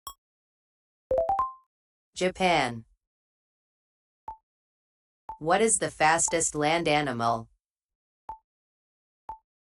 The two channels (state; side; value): identical; both; correlation 1.00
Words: Japan. What is the fastest land animal?